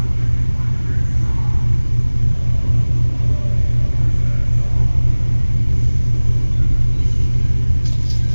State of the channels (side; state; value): both; inverted; correlation -1.00